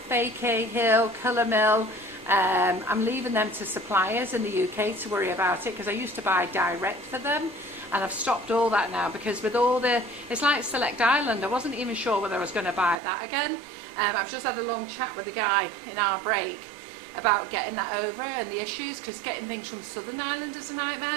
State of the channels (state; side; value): drops out; left; at 13.0 s